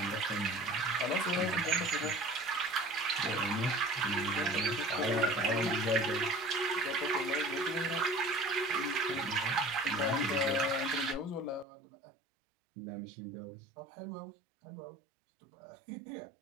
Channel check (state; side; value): drops out; left; at 11.7 s